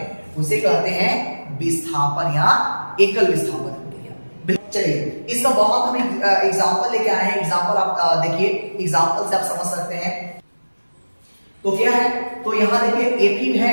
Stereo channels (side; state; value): both; inverted; correlation -1.00